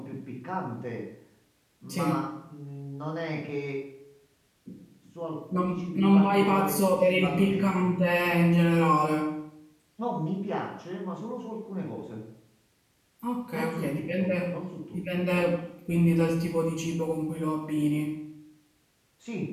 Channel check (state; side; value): identical; both; correlation 1.00